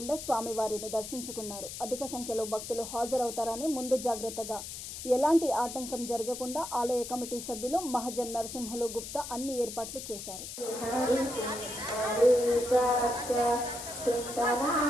స్వామివారిని దర్శించుకున్నారు. అధిక సంఖ్యలో భక్తులు హాజరవుతారని ముందు జాగ్రత్తగా ఎలాంటి ఆటంకం జరగకుండా ఆలయ కమిటీ సభ్యులు మహజన్ నరసింహులు గుప్తా అన్ని ఏర్పాట్లు చేశారు.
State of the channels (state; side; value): noise; left; hiss, 9 dB below the sound